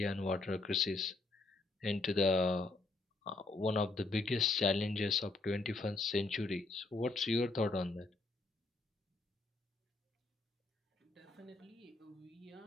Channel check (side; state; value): right; quieter; 3.3 dB